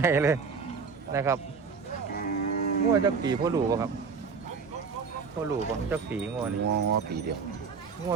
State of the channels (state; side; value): quieter; left; 5.4 dB